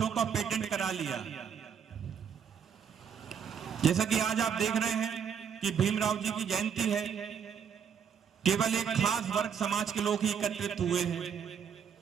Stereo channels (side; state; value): left; quieter; 7.5 dB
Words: का पेटेंट करा लिया। जैसा कि आज आप देख रहे हैं कि भीमराव जी की जयंती है, केवल एक खास वर्ग समाज के लोग ही एकत्रित हुए हैं,